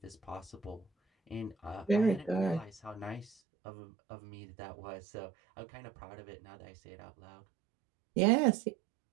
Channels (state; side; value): drops out; left; at 3.4 s